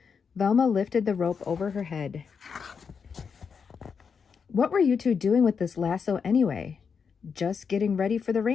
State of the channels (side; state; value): right; quieter; 6.1 dB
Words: Velma lifted the rope over her head. "What were you two doing with this lasso anyway?" "Just getting ready for the